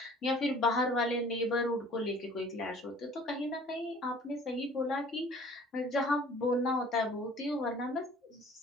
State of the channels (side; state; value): both; normal; correlation 0.51